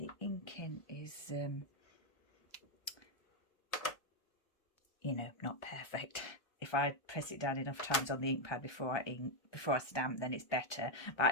inking is you know, not perfect. If I press it down enough times on the ink pad before I stamp, then it's better. But I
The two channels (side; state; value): right; late; 1.3 ms